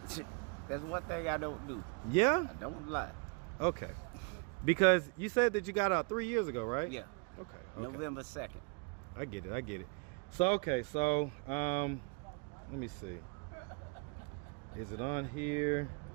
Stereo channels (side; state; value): left; quieter; 34.3 dB